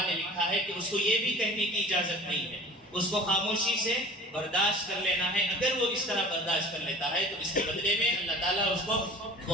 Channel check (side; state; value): both; normal; correlation 0.44